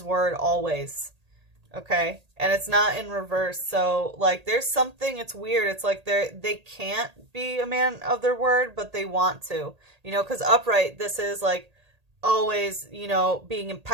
word always. Okay, and it's not in reverse. So like, there's something, it's weird. It's like they can't be a man of their word, but they want to, you know, because upright, this is like always, you know, being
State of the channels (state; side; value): late; left; 1.8 ms